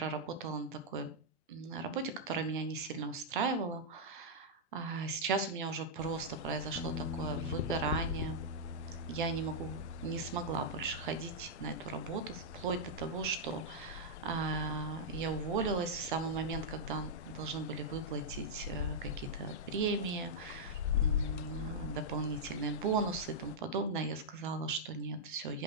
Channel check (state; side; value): normal; both; correlation -0.07